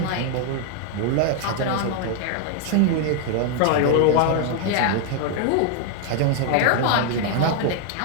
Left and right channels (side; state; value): both; different; correlation 0.00